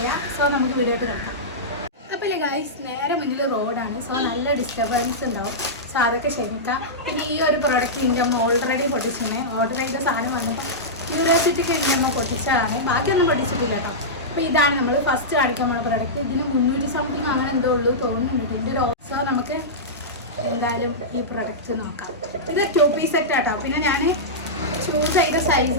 സോ നമുക്ക് വീഡിയോ ആയിട്ട് നോക്കാം. അപ്പോൾ ഗായ്സ്, നേരെ മുന്നിൽ റോഡാണ്. സോ നല്ല ഡിസ്റ്റർബൻസ് ഉണ്ടാവും. സോ അതൊക്കെ ക്ഷമിക്കാം. പിന്നെ ഈ ഒരു പ്രോഡക്റ്റ് എൻ്റെ അമ്മ ഓൾറെഡി പൊട്ടിച്ചിരുന്നേ. ഓർഡർ ചെയ്ത സാധനം വന്നപ്പോൾ ക്യൂരിയോസിറ്റിക്ക് എൻ്റെ അമ്മ പൊട്ടിച്ചതാണ്. ബാക്കിയൊന്നും പൊട്ടിച്ചിട്ടില്ല കേട്ടോ. അപ്പോൾ ഇതാണ് നമ്മൾ ഫസ്റ്റ് കാണിക്കാൻ പോകുന്ന പ്രോഡക്റ്റ്. ഇതിന് 300 സംതിങ് അങ്ങനെ എന്തോ ഉള്ളൂ തോന്നുന്നുണ്ട്. ഇതിൻ്റെ ഒരു സോ നമുക്ക് എന്തായാലും ഈ പ്രൊഡക്റ്റ് നോക്കാം. ഇത് 2 പീസ് സെറ്റ് ആട്ടോ. പിന്നെ ഞാൻ ചൂസ് ചെയ്ത സൈസ്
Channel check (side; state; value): both; normal; correlation -0.13